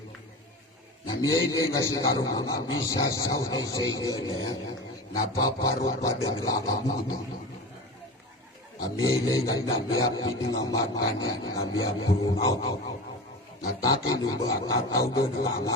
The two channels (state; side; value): normal; both; correlation 0.30